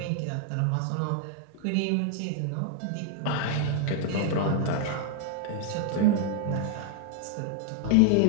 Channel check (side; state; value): both; different; correlation 0.00